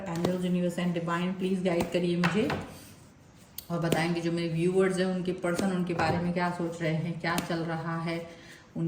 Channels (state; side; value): identical; both; correlation 1.00